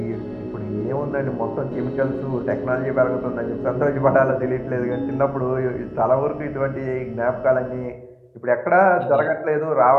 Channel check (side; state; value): both; identical; correlation 1.00